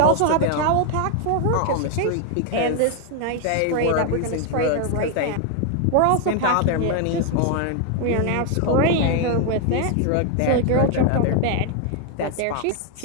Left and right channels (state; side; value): different; both; correlation 0.01